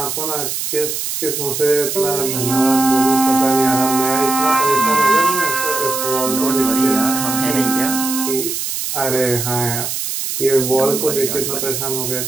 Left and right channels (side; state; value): right; noise; hiss, 3 dB below the sound